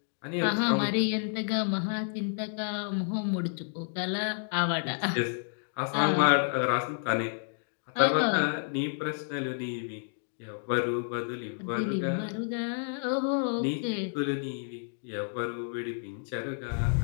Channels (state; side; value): silent; right; digital silence